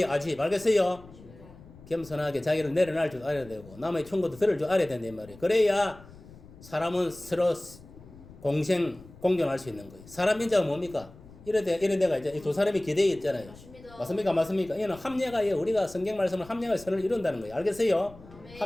아집. 알겠어요? 겸손하게 자기를 내려놔 줄 알아야 되고 남의 충고도 들을 줄 알아야 된단 말이에요. 그래야 사람은 서로 공존할 수 있는 거예요. 사람 민자가 뭡니까? 이런 데가 이제 두 사람이 기대에 있잖아요. 맞습니다. 맞습니까? 이는 합례가 우리가 성경 말씀을 합례가 선을 이룬다는 거예요. 알겠어요? 네.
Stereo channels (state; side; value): noise; left; rumble, 20 dB below the sound